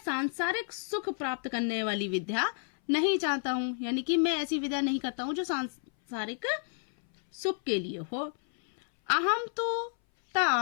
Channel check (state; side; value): silent; right; 57 dB below the other